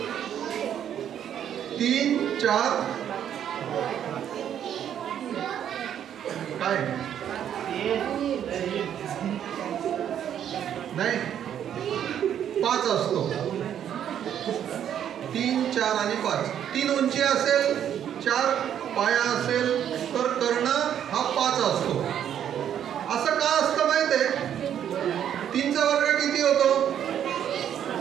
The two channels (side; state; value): left; quieter; 9.7 dB